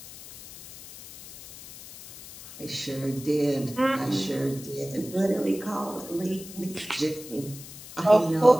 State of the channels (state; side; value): noise; left; hiss, 15 dB below the sound